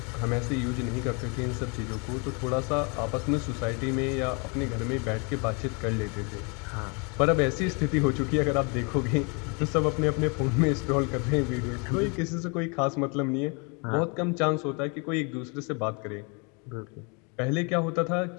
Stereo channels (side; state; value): right; quieter; 32.9 dB